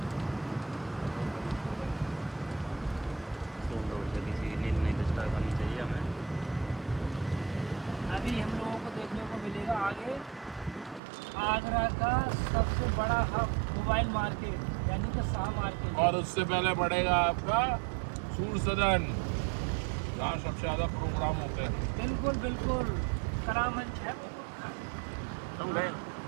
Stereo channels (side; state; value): left; drops out; at 11.0 s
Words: किसी नींद नहीं डिस्टर्ब करनी चाहिए हमें। अभी हम लोगों को देखने को मिलेगा आगे आगरा का सबसे बड़ा हब मोबाइल मार्केट, यानी कि शाह मार्केट। और उससे पहले पड़ेगा आपका सूर सदन, जहाँ सबसे ज्यादा प्रोग्राम होते हैं। बिल्कुल बिल्कुल करामंच है। तुम गए